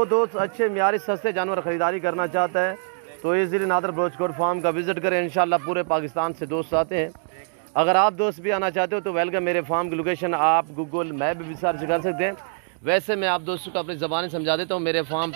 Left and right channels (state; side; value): silent; left; digital silence